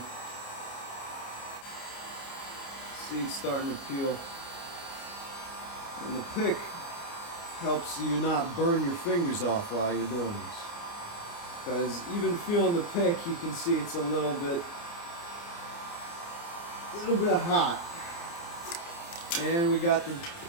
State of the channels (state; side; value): late; right; 29 ms